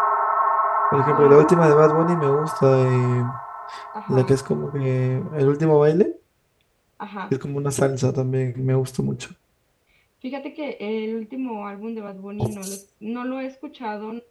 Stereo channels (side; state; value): both; identical; correlation 1.00